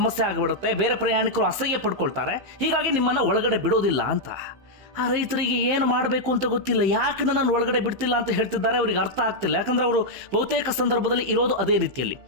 ಆಗಿಬಿಡುತ್ತೆ, ಬೇರೆ ಪ್ರಯಾಣಿಕರು ಅಸಹ್ಯ ಪಡ್ಕೊಳ್ತಾರೆ, ಹೀಗಾಗಿ ನಿಮ್ಮನ್ನು ಒಳಗಡೆ ಬಿಡೋದಿಲ್ಲ ಅಂತ. ಆ ರೈತರಿಗೆ ಏನು ಮಾಡಬೇಕು ಅಂತ ಗೊತ್ತಿಲ್ಲ. ಯಾಕೆ ನನ್ನನ್ನು ಒಳಗಡೆ ಬಿಡ್ತಿಲ್ಲ ಅಂತ ಹೇಳ್ತಿದ್ದಾರೆ, ಅವರಿಗೆ ಅರ್ಥ ಆಗ್ತಿಲ್ಲ. ಯಾಕಂದ್ರೆ ಅವರು ಬಹುತೇಕ ಸಂದರ್ಭದಲ್ಲಿ ಇರೋದು ಅದೇ ರೀತಿಯಲ್ಲಿ.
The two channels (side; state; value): left; late; 15 ms